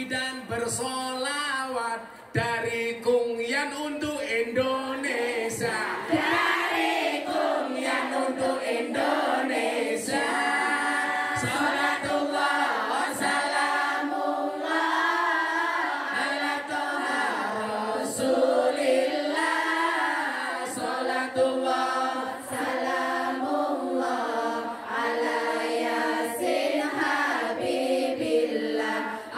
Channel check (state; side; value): identical; both; correlation 1.00